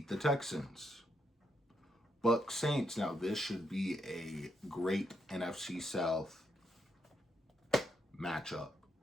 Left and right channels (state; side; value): normal; both; correlation 0.79